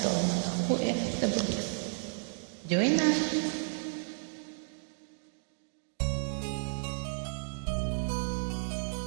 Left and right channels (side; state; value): left; silent; digital silence